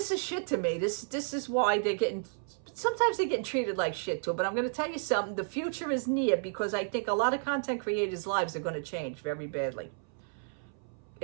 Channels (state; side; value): silent; left; 56 dB below the other